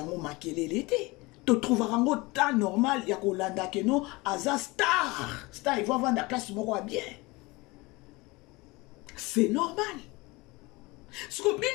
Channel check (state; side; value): quieter; right; 23.5 dB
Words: makelele l'été. Tu trouveras un temps normal, il y a Kolanda que non, Aza star, il va vendre la place moko bien. C'est normal. Ce que